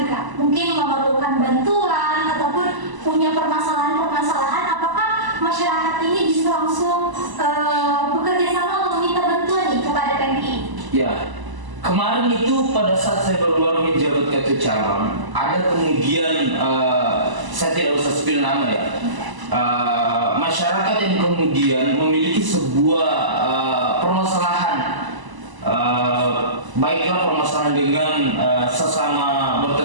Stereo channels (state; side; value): late; left; 1.0 ms